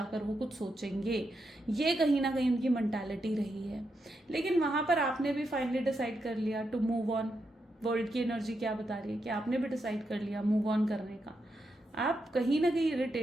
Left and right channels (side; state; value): both; normal; correlation 0.84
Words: वो कुछ सोचेंगे। ये कहीं ना कहीं उनकी मेंटालिटी रही है। लेकिन वहाँ पर आपने भी फाइनली डिसाइड कर लिया टू मूव ऑन। वर्ल्ड की एनर्जी क्या बता रही है कि आपने भी डिसाइड कर लिया मूव ऑन करने का। आप कहीं ना कहीं